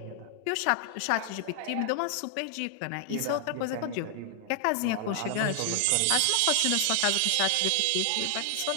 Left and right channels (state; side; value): different; both; correlation 0.00